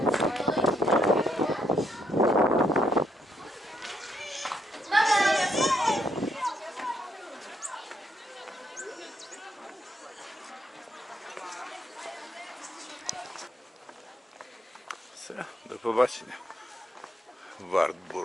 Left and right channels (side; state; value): both; normal; correlation 0.75